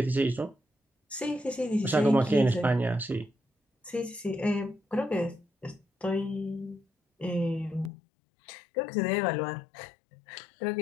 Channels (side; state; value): right; drops out; at 7.9 s